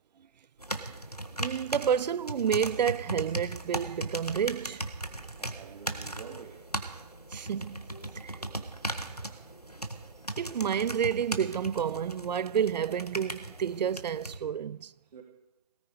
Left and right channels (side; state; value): left; quieter; 6.2 dB